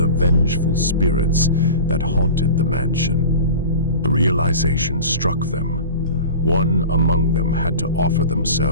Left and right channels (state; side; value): inverted; both; correlation -0.34